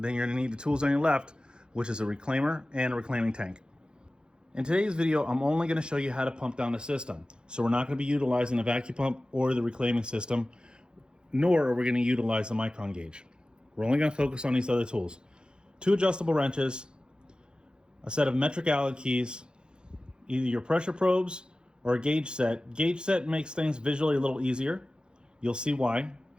you're going to need the tools on your left, which is a reclaimer and a reclaiming tank. In today's video, I'm only going to show you how to pump down the system. So we're not going to be utilizing the vacuum pump or the reclaiming system, nor are we going to utilize the micron gauge. We're only going to focus on these other tools. 2 adjustable wrenches, a set of metric Allen keys, either your pressure probes or a gauge set. Gauge set makes things visually a little easier. You'll see why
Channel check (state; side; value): late; left; 0.049 ms